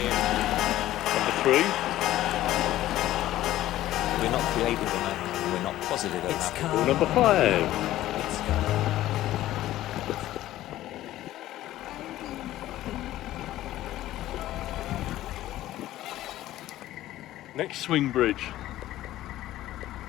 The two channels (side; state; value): right; quieter; 14.5 dB